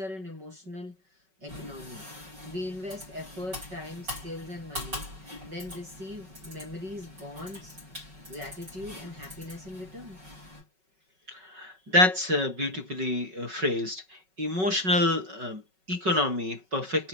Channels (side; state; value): left; late; 5.3 ms